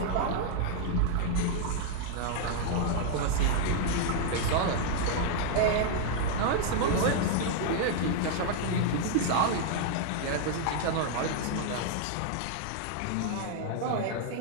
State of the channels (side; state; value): both; different; correlation 0.00